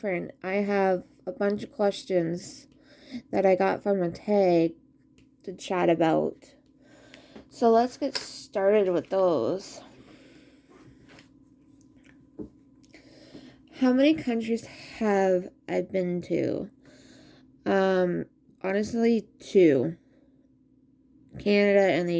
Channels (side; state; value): both; identical; correlation 1.00